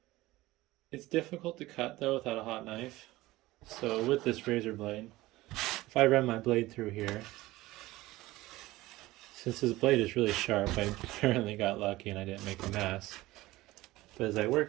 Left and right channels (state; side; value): quieter; left; 18.3 dB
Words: It's difficult to cut though without a hot knife. So with this razor blade, if I run my blade through here, since this blade is really sharp, I apparently got lucky and I didn't make a mess. But as I